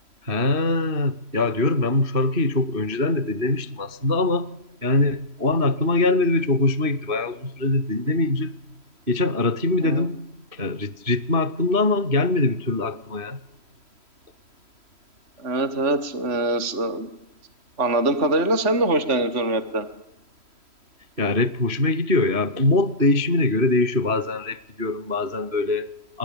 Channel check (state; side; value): late; left; 3.1 ms